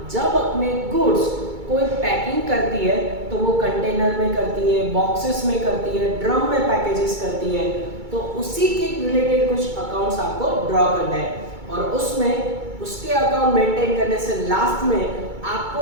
जब अपने गुड्स कोई पैकिंग करती है तो वो कंटेनर में करती है, बॉक्सेस में करती है, ड्रम में पैकेजेस करती है, तो उसी के रिलेटेड कुछ अकाउंट्स आपको ड्रॉ करना है और उसमें उसके अकाउंट मेंटेन करने से लास्ट में आपको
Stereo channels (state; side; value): late; left; 2.2 ms